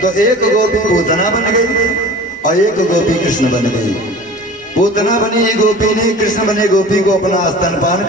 तो एक गोपी पूतना बन गई और एक गोपी कृष्ण बन गई। पूतना बनी गोपी ने कृष्ण बने गोपी को अपना स्तनपान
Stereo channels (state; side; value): normal; both; correlation 0.40